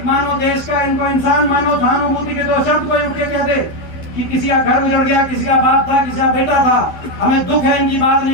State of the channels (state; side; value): late; right; 12 ms